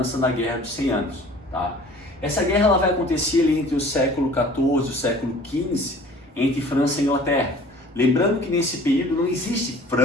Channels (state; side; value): normal; both; correlation 0.48